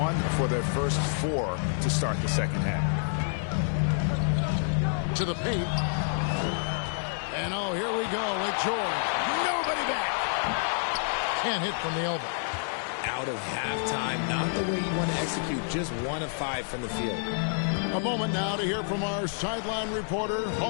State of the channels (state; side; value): silent; right; digital silence